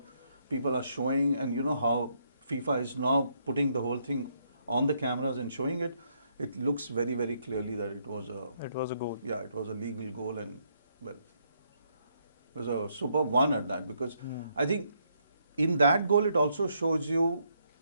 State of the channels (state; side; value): inverted; both; correlation -0.74